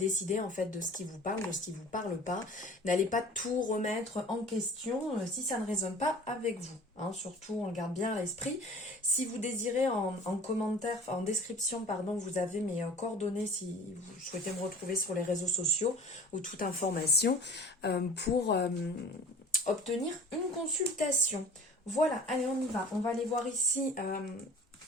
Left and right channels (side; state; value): both; normal; correlation 0.44